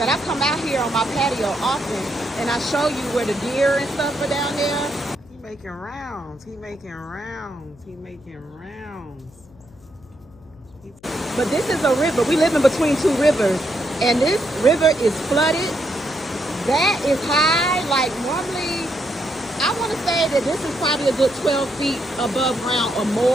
I come out here on my patio often and I show you where the deer and stuff are down there. He making rounds. He making rounds. He making rounds. But this is a river. We live in between two rivers, and this river is flooded. That is high. Like normally, I want to say that this is probably a good 12 feet above ground or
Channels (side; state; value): left; noise; hum, 26 dB below the sound